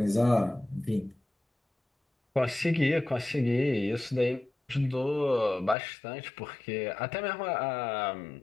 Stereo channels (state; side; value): drops out; right; at 5.8 s